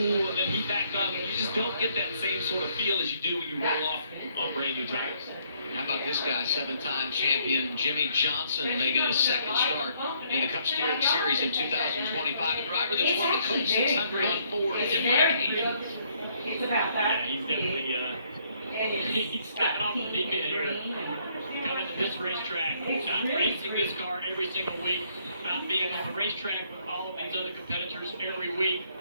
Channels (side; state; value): both; inverted; correlation -0.68